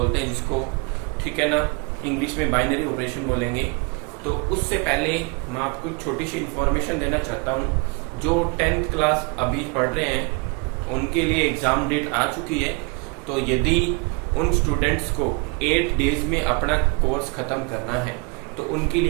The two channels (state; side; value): quieter; left; 31.6 dB